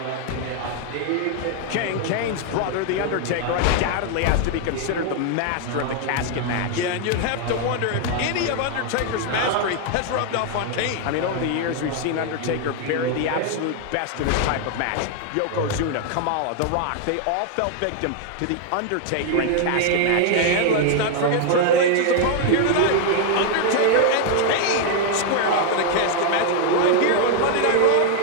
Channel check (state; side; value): different; both; correlation 0.00